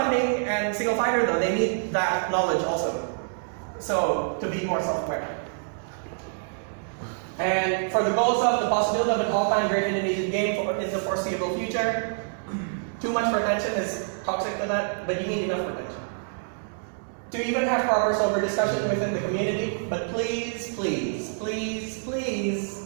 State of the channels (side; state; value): left; silent; 60 dB below the other